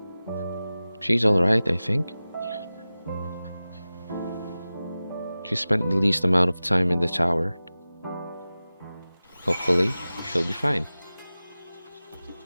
She's alright, I think. She spent the least amount of time in the tower. Hopefully, she'll be fine.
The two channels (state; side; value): inverted; both; correlation -0.96